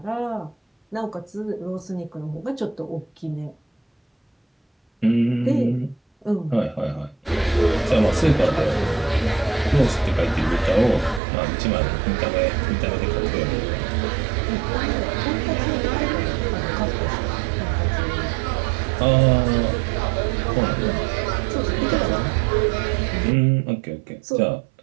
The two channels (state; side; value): drops out; left; at 11.2 s